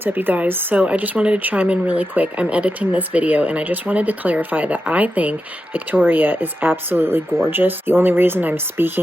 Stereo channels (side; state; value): both; normal; correlation 0.89